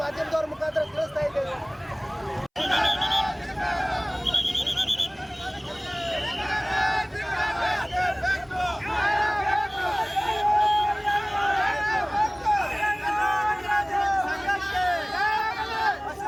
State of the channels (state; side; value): identical; both; correlation 1.00